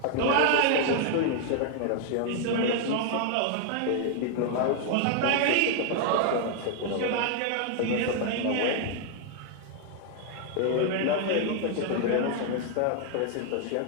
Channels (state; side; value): different; both; correlation 0.00